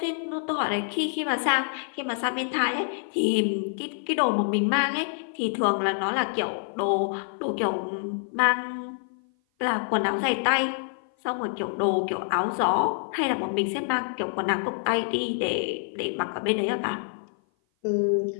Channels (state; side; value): silent; right; 56 dB below the other